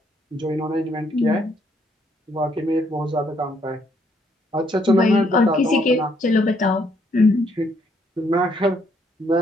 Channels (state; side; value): normal; both; correlation 0.70